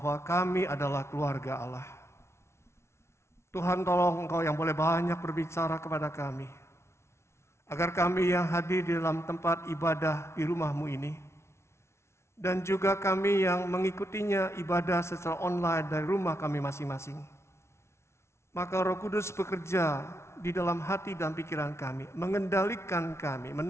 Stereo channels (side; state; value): right; late; 0.13 ms